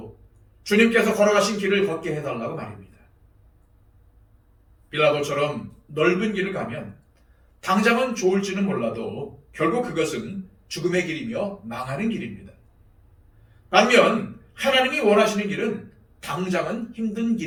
주님께서 걸어가신 길을 걷게 해달라고 말입니다. 빌라도처럼 넓은 길을 가면 당장은 좋을지는 몰라도 결국 그것은 죽음의 길이며 망하는 길입니다. 반면 하나님이 원하시는 길은 당장은 힘든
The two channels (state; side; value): identical; both; correlation 1.00